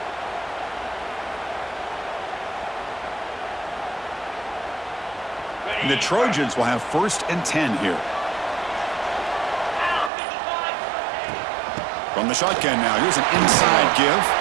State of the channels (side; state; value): left; drops out; at 10.1 s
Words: And the Trojans will have 1st and 10 here. From the shotgun now, here's an inside give.